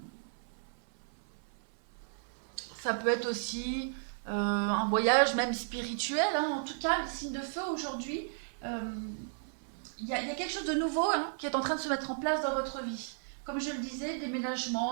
ça peut être aussi un voyage même spirituel. Hein. En tout cas, le signe de feu aujourd'hui, il y a quelque chose de nouveau qui est en train de se mettre en place dans votre vie. Comme je le disais,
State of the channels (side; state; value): left; silent; 55 dB below the other